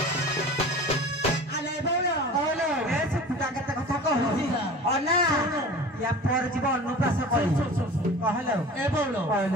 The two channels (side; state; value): both; normal; correlation 0.39